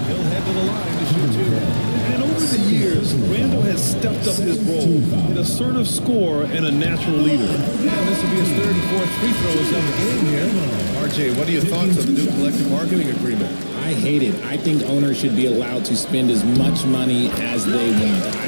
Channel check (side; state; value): both; inverted; correlation -1.00